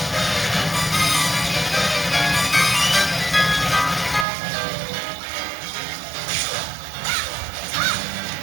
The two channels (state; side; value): drops out; left; at 4.2 s